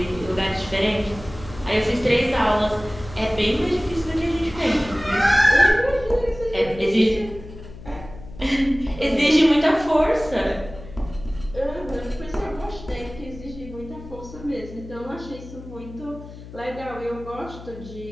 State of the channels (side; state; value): left; noise; hum, 15 dB below the sound